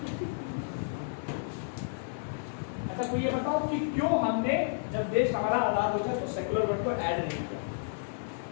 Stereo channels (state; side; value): silent; right; 57 dB below the other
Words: अच्छा, तो ये बताओ कि क्यों हमने जब देश हमारा आजाद हो गया तो सेकुलर वर्ड को ऐड नहीं किया?